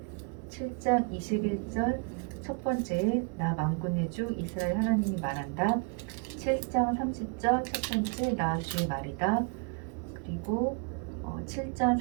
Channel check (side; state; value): left; quieter; 36.5 dB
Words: 7장 21절 첫 번째에 나 만군의 주 이스라엘 하나님이 말한다. 7장 30절 첫 번째 나 주의 말이다. 그리고 7장